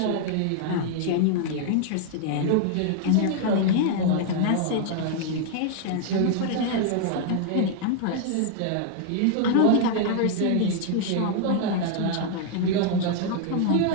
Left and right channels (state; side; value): different; both; correlation 0.00